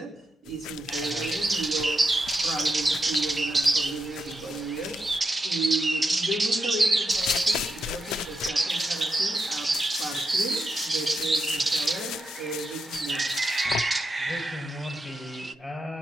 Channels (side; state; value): both; normal; correlation 0.85